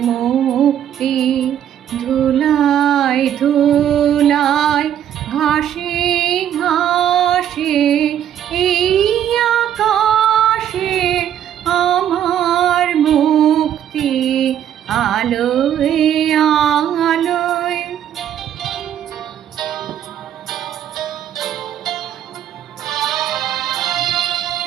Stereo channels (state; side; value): quieter; left; 10.2 dB